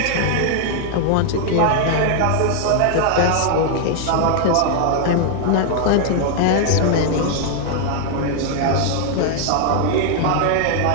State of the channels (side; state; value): both; different; correlation 0.00